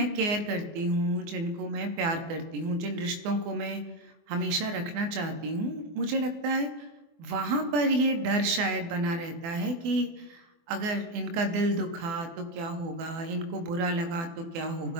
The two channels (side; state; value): left; late; 24 ms